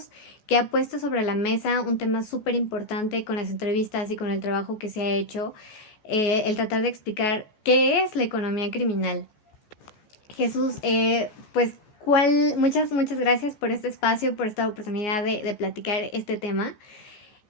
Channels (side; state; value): right; late; 14 ms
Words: que ha puesto sobre la mesa un tema súper importante con las entrevistas y con el trabajo que se ha hecho, el tratar de explicar qué es la economía criminal. Jesús, pues muchas gracias por este espacio, por esta oportunidad de platicar este tema.